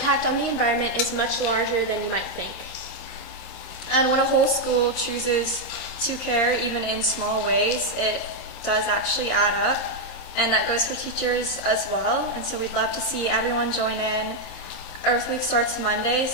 on the environment is much larger than you might think. And when a whole school chooses to care, even in small ways, it does actually add up. And that goes for teachers as well. And so we'd love to see everyone join in. Earth Week starts Monday,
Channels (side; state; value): right; late; 26 ms